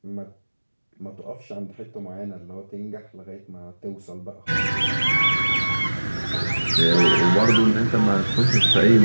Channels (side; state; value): both; inverted; correlation -1.00